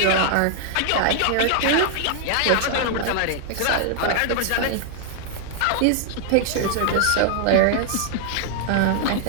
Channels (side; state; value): both; different; correlation 0.00